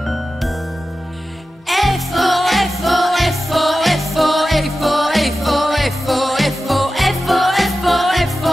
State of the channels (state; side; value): normal; both; correlation 0.93